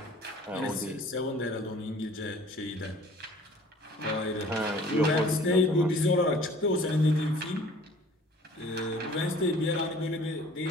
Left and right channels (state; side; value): normal; both; correlation 0.50